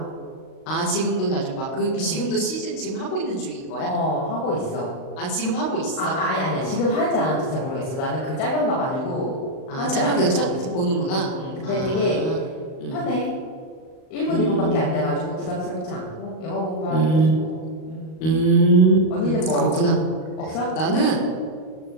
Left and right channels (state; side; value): late; right; 38 ms